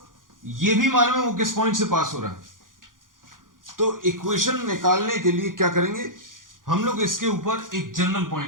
ये भी मालूम है वो किस पॉइंट से पास हो रहा है, तो इक्वेशन निकालने के लिए क्या करेंगे, हम लोग इसके ऊपर एक जनरल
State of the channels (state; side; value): late; left; 0.90 ms